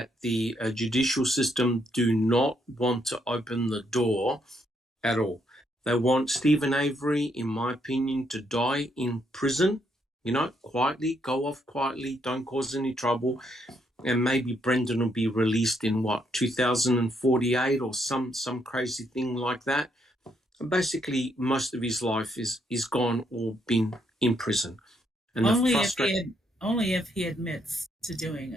the judicial system do not want to open the door at all. They want Stephen Avery, in my opinion, to die in prison, quietly, go off quietly, don't cause any trouble. And maybe Brendan will be released in 2048 or some crazy thing like that. And basically, most of his life is gone or been in prison. And only if he admits to doing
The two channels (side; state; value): both; normal; correlation 0.74